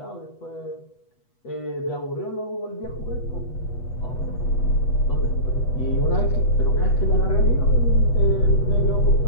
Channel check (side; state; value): right; late; 8.1 ms